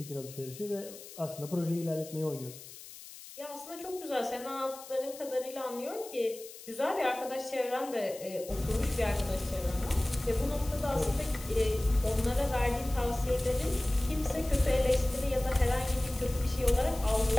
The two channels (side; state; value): left; noise; hiss, 16 dB below the sound